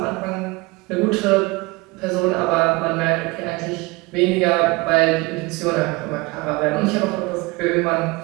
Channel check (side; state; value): left; quieter; 24.3 dB